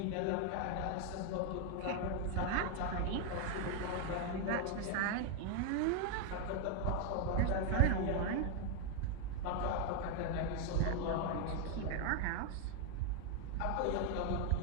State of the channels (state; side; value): different; both; correlation 0.00